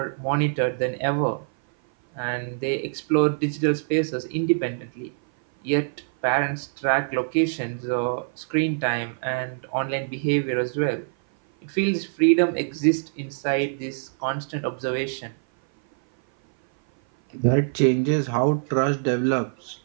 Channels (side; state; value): left; silent; 57 dB below the other